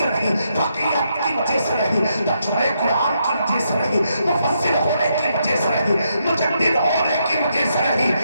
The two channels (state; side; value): inverted; both; correlation -0.79